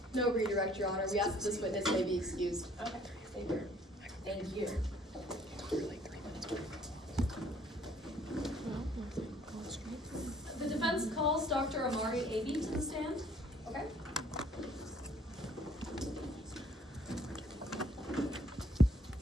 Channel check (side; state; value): both; normal; correlation 0.60